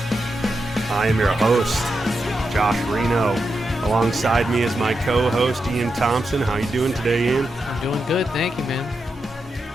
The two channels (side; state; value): both; normal; correlation 0.86